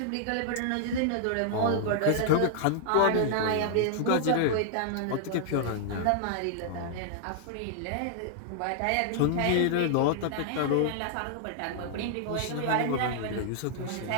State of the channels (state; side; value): different; both; correlation -0.01